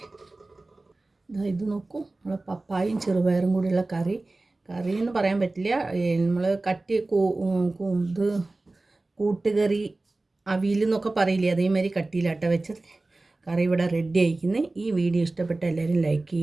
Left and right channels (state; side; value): quieter; left; 3.1 dB